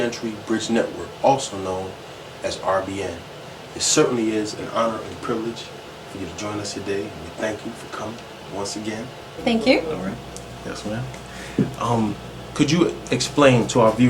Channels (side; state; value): both; identical; correlation 1.00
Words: Bridge Network, also known as RBN. It certainly is an honor and privilege for you to join us today, and we thank you for coming once again. Thank you. All right. Yes, ma'am. Could you explain to our